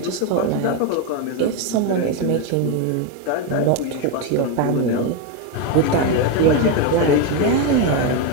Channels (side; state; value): both; different; correlation 0.02